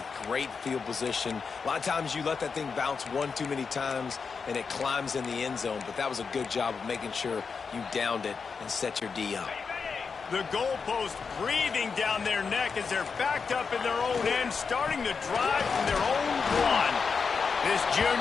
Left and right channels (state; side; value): quieter; right; 5.4 dB